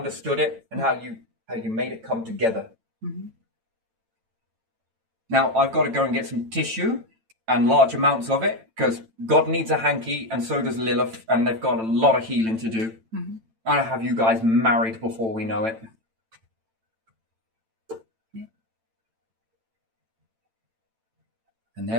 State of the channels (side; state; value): left; late; 9.0 ms